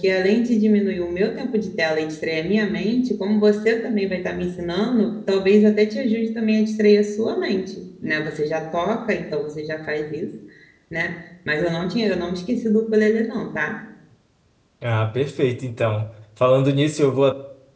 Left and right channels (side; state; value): both; identical; correlation 1.00